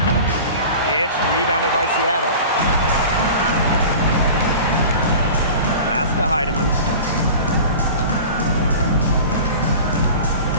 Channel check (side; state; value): both; inverted; correlation -0.37